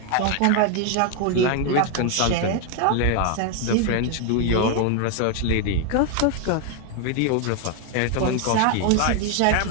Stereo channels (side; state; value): both; different; correlation 0.01